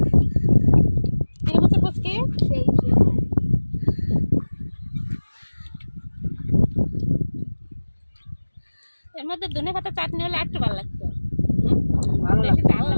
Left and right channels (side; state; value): both; inverted; correlation -1.00